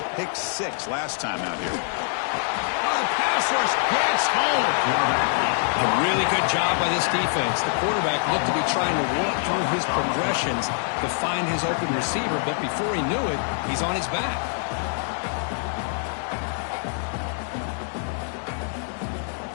pick 6 last time out here. Oh, the pass rush gets home. A really good job by this defense. The quarterback looked to be trying to work through his progressions to find his open receiver, but before he knew it, he's on his back.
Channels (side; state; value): right; silent; 57 dB below the other